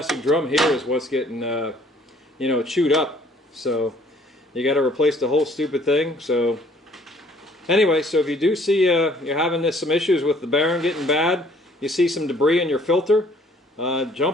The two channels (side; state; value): both; normal; correlation 0.59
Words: getting you know, chewed up. So you got to replace the whole stupid thing. So anyway, so if you do see you're having some issues with the bearing getting bad, you see some debris in your filter,